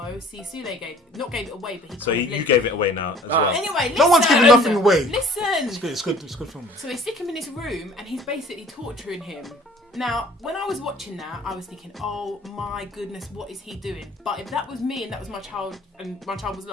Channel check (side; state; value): both; normal; correlation 0.52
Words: See, Sule gave it away, but he. So you gave it away now as well. Anyway, listen. No one's giving nothing away. Listen. It's good film. So they stick him in this room, and he's basically torturing him. Now, when I was watching that, I was thinking, oh my goodness, what is he doing? But if that was me and that was my child, and my child was